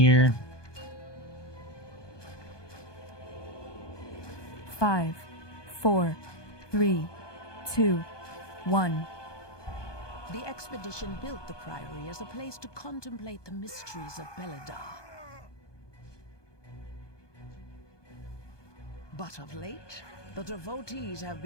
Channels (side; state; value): right; late; 1.2 ms